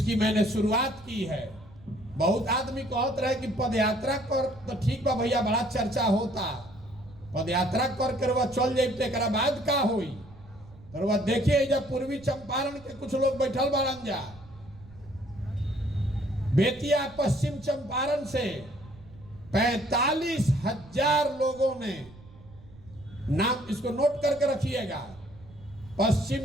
मैंने शुरुआत की है। बहुत आदमी कहते रहे कि पदयात्रा कर तो ठीक बा भैया, बड़ा चर्चा होता, पदयात्रा कर वह चल जाए तो बाद का होई? तो वह देखिए, जब पूर्वी चंपारण के कुछ लोग बैठल बाड़न जा, बेतिया पश्चिम चंपारण से 45,000 लोगों ने नाम, इसको नोट करके रखिएगा,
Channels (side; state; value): right; noise; rumble, 22 dB below the sound